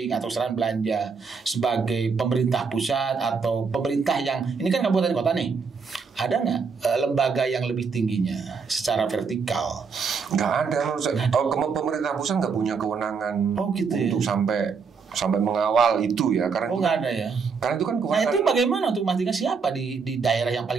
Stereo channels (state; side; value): quieter; left; 5.4 dB